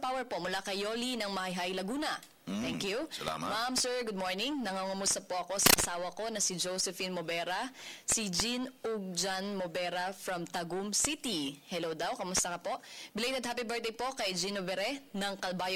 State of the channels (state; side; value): identical; both; correlation 1.00